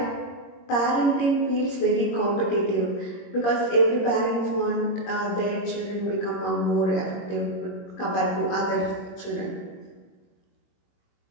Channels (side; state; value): right; late; 21 ms